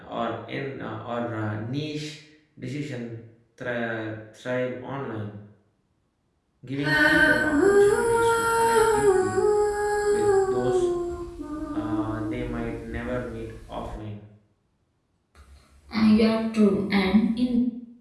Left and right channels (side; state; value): both; identical; correlation 1.00